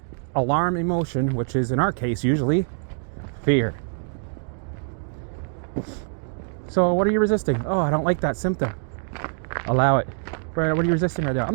alarm emotion, which is in our case usually fear. So what are you resisting? Oh, I don't like that symptom. Allow it. What are you resisting right now? I'm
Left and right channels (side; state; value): left; silent; 55 dB below the other